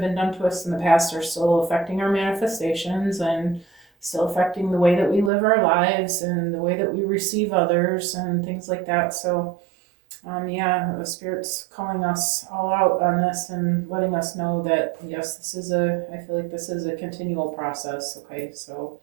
been done to us in the past are still affecting our manifestations, and still affecting the way that we live our lives and the way that we receive others and things like that. So the Spirit's calling us all out on this and letting us know that, yes, I feel like this is a continual process. Okay, so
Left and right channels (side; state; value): left; drops out; at 5.3 s